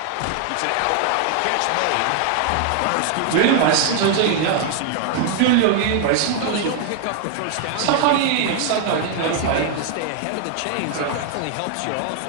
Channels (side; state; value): both; different; correlation 0.00